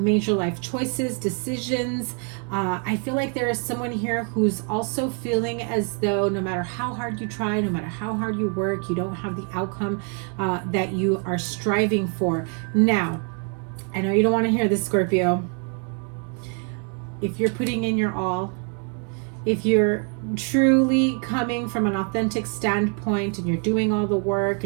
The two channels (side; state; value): left; quieter; 39.0 dB